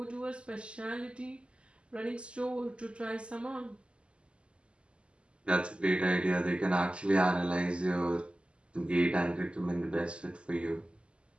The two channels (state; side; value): late; left; 0.054 ms